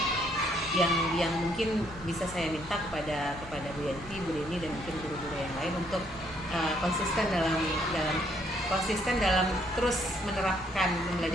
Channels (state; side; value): normal; both; correlation 0.69